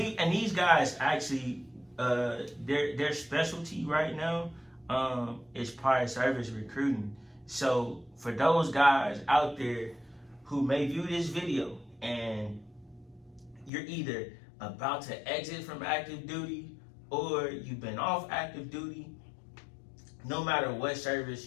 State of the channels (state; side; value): drops out; right; at 13.7 s